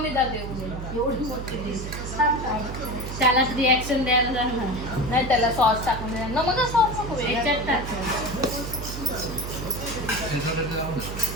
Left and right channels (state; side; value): noise; right; hum, 7 dB below the sound